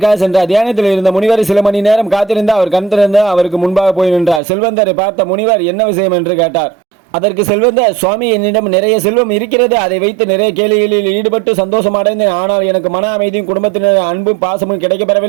சென்றார். தியானத்தில் இருந்த முனிவர் சில மணி நேரம் காத்திருந்த அவர் கண் திறந்து அவருக்கு முன்பாக போய் நின்றார். செல்வந்தரை பார்த்த முனிவர் என்ன விஷயம் என்று கேட்டார். அதற்கு செல்வந்தர், சுவாமி, என்னிடம் நிறைய செல்வம் இருக்கிறது. அதை வைத்து நிறைய கேளிகளில் ஈடுபட்டு சந்தோஷம் அடைந்தேன். ஆனால் எனக்கு மன அமைதியும் குடும்பத்தினர் அன்பும் பாசமும்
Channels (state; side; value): drops out; left; at 4.4 s